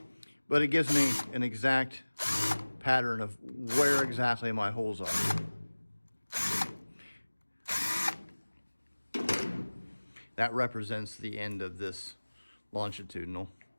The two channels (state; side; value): inverted; both; correlation -1.00